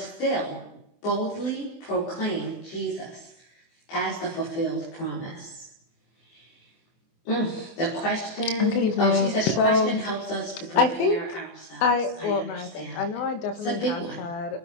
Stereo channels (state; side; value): late; right; 24 ms